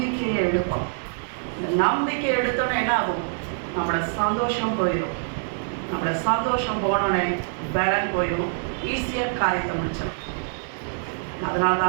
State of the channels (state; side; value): silent; left; digital silence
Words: எடுப்போம். இந்த நம்பிக்கையை எடுத்தோன்னே என்ன ஆகும், நம்மளோட சந்தோஷம் போயிடும். நம்மளோட சந்தோஷம் போனோடனே பலன் போயிடும், ஈஸியாக காரியத்தை முடிச்சிடும். அதனால